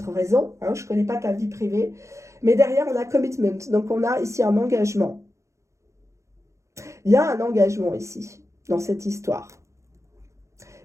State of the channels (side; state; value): left; late; 0.14 ms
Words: raison, hein, je ne connais pas ta vie privée, mais derrière, on a commitment, donc on a ici un engagement. Il y a un engagement ici, dans cette histoire.